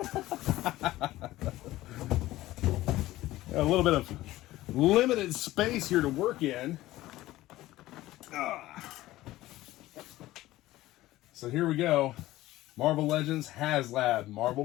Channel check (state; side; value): quieter; right; 16.5 dB